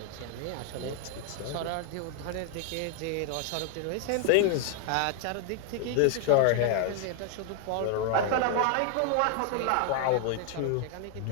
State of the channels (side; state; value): both; different; correlation 0.00